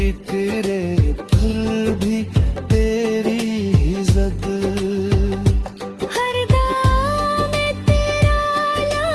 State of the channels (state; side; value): identical; both; correlation 1.00